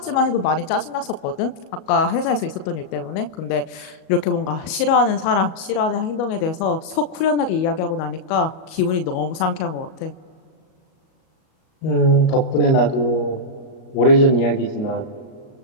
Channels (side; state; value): right; late; 38 ms